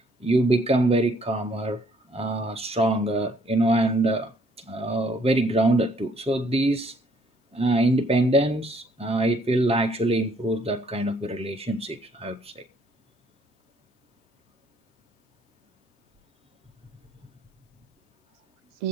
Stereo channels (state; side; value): normal; both; correlation 0.64